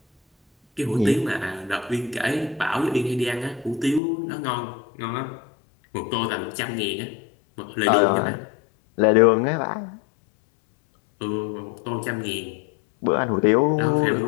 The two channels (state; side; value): drops out; right; at 4.0 s